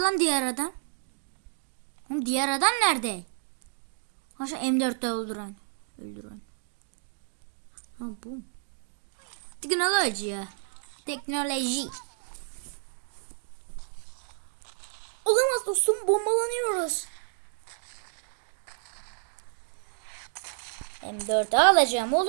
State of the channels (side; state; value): left; silent; digital silence